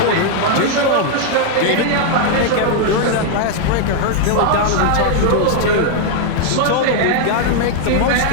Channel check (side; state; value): both; different; correlation 0.00